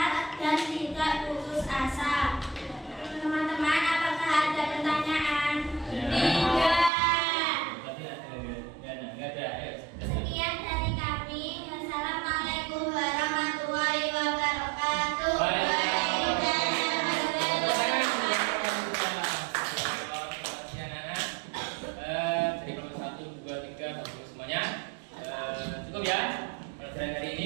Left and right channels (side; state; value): left; drops out; at 6.9 s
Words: Cukup ya pelajaran hari